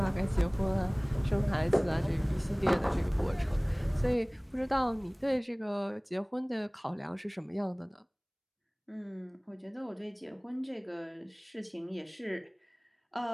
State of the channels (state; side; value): identical; both; correlation 1.00